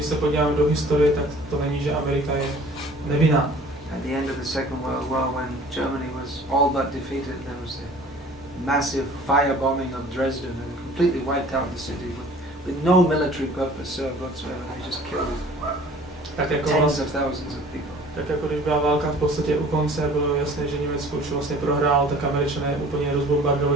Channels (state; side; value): normal; both; correlation 0.49